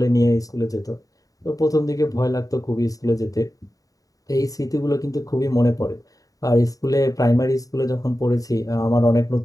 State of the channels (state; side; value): late; right; 0.17 ms